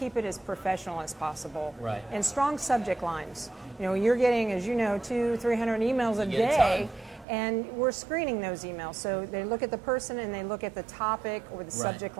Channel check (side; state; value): left; drops out; at 7.2 s